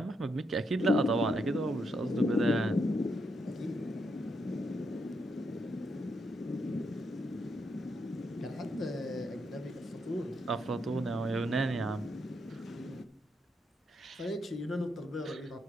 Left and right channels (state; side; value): normal; both; correlation 0.80